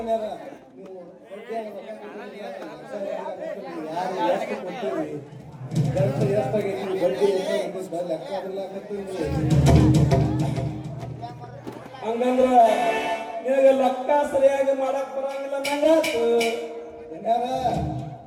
ಹಂಗಂದ್ರ ನಿನಗೆ ಲೆಕ್ಕ ಸರಿಯಾಗಿ ಮಾಡಕ್ ಬರಂಗಿಲ್ಲ ನಂಗಾತು.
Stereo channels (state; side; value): identical; both; correlation 1.00